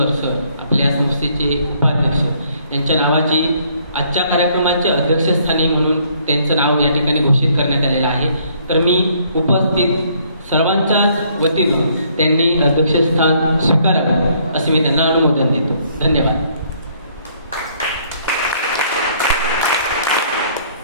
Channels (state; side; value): inverted; both; correlation -0.65